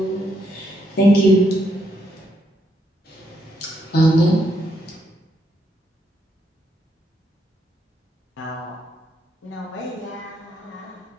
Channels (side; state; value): both; normal; correlation 0.77